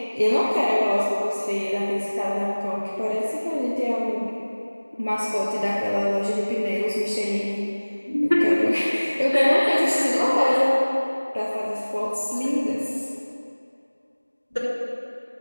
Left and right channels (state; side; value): inverted; both; correlation -1.00